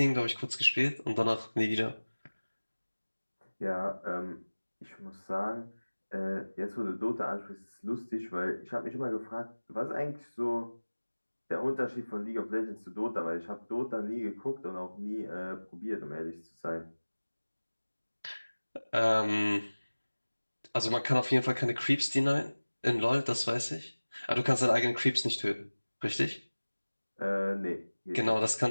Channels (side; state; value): both; inverted; correlation -1.00